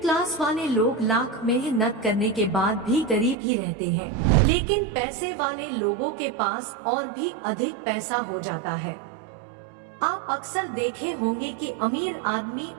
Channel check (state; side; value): drops out; left; at 3.4 s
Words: वाले लोग लाख मेहनत करने के बाद भी गरीब ही रहते हैं, लेकिन पैसे वाले लोगों के पास और भी अधिक पैसा हो जाता है। आप अक्सर देखे होंगे कि अमीर आदमी